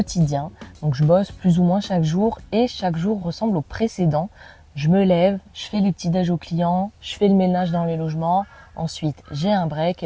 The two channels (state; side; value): identical; both; correlation 1.00